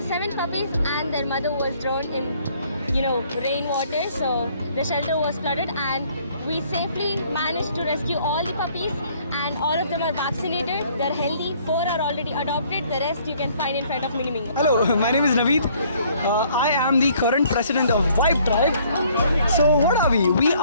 7 puppies and their mother was drowned in rainwater. So the shelter was flooded, and we safely managed to rescue all the puppies, and all of them are vaccinated. They're healthy. 4 are already adopted. The rest you can find in front of Mini Mingo. Hello, my name is Naveed. I am the current president of Vibe Tribe. So what are we? We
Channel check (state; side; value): inverted; both; correlation -0.62